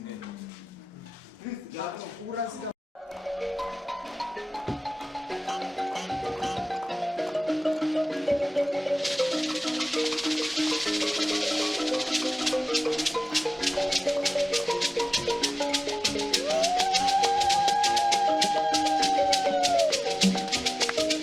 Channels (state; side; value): normal; both; correlation 0.98